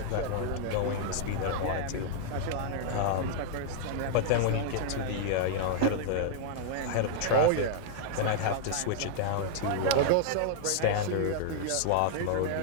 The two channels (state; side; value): different; both; correlation -0.01